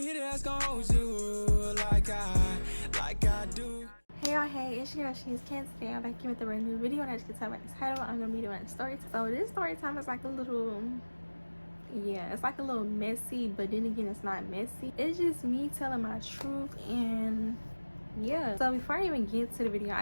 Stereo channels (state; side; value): inverted; both; correlation -1.00